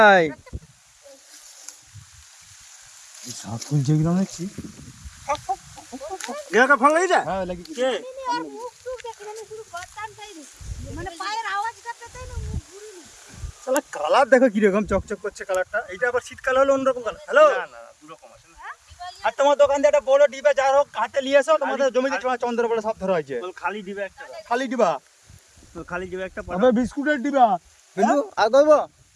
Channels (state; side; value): identical; both; correlation 1.00